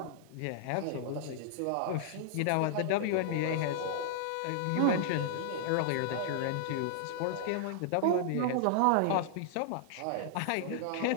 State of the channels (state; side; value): different; both; correlation -0.01